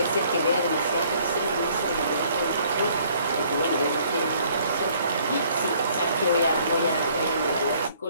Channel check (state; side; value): inverted; both; correlation -0.61